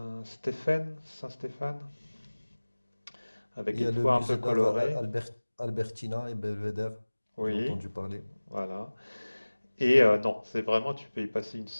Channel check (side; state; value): both; inverted; correlation -1.00